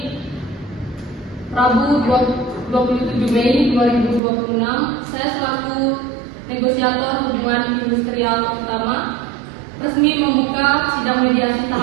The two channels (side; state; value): left; drops out; at 4.2 s